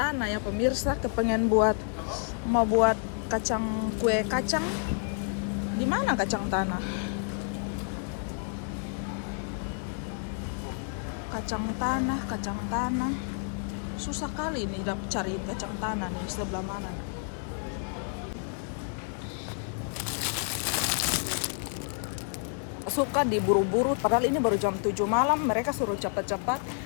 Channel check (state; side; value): silent; right; 58 dB below the other